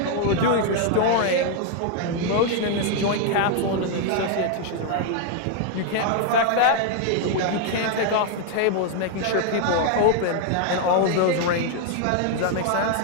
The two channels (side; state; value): both; different; correlation 0.00